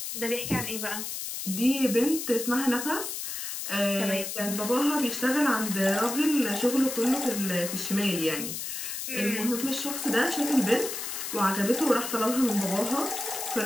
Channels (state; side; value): noise; left; hiss, 5 dB below the sound